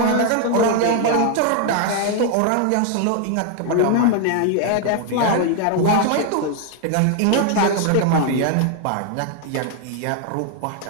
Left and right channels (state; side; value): different; both; correlation 0.01